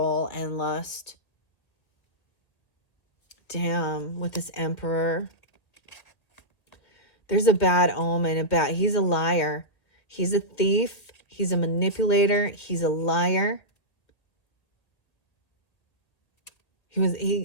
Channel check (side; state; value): right; late; 1.9 ms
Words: and lust. Damn, with this Emperor. There's a bad omen, he's a liar. He's a thief. He's a manipulator. He's a liar.